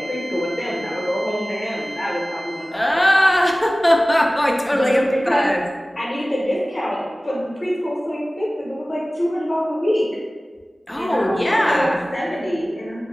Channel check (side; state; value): both; normal; correlation 0.98